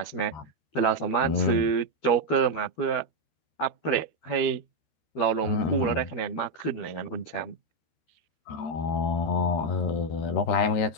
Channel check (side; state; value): right; late; 13 ms